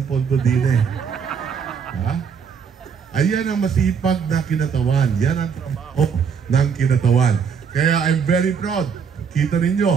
pondo din eh. Ha? Ayan ang masipag na kinatawan. Yan ang trabaho ng kinatawan. Kaya I'm very proud. Kita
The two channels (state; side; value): quieter; left; 6.5 dB